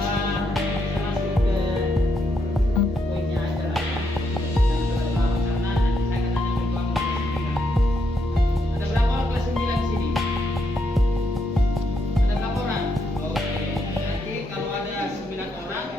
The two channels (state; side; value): normal; both; correlation 0.78